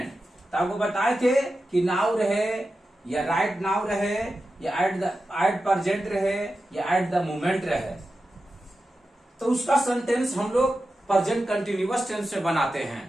तो आपको बताए थे कि नाउ रहे या राइट नाउ रहे या एट प्रेजेंट रहे या एट द मोमेंट रहे, तो उसका सेंटेंस हम लोग प्रेजेंट कंटिन्यूअस टेंस से बनाते हैं।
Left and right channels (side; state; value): both; normal; correlation 0.91